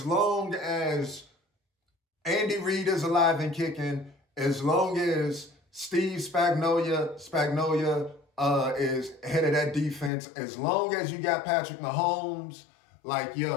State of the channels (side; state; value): right; drops out; at 10.1 s